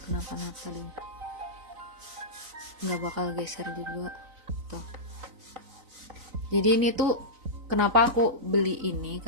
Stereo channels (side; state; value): left; late; 3.9 ms